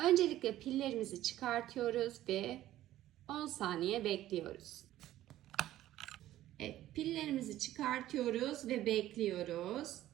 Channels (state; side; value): quieter; left; 13.9 dB